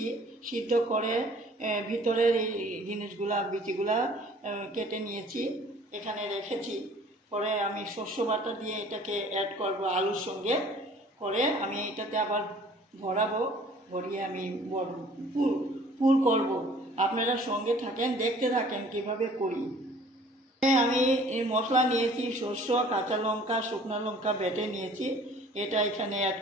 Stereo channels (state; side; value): normal; both; correlation 0.52